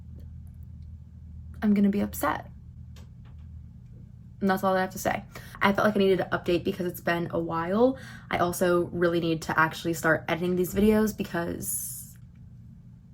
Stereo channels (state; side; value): identical; both; correlation 1.00